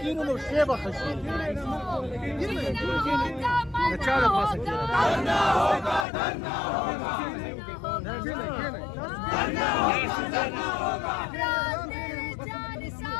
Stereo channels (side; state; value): right; drops out; at 6.1 s